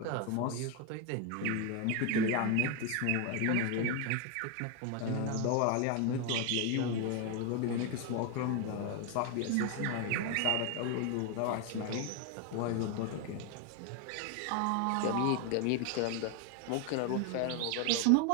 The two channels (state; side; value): different; both; correlation 0.01